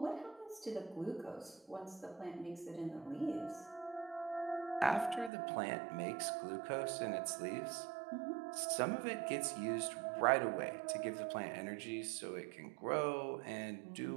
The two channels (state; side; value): drops out; left; at 5.3 s